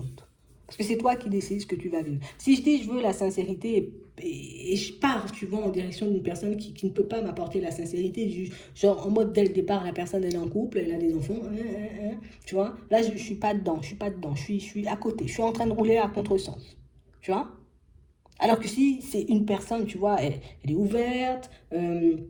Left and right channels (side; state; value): both; identical; correlation 1.00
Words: Parce que c'est toi qui décides ce que tu vas vivre. Si je dis je veux la sincérité et je pars, tu vois, en direction d'une personne qui ne peut pas m'apporter la sincérité, genre en mode dès le départ, la personne elle est en couple, elle a des enfants, tu vois, là je suis pas dedans, je suis à côté, je suis en train de rouler à contresens, tu vois. Alors que si c'est une personne, tu vois, elle est ouverte,